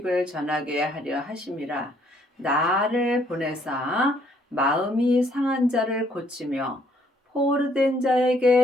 전하게 하려 하심이라. 나를 보내사 마음이 상한 자를 고치며 포로된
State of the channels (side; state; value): both; normal; correlation 0.66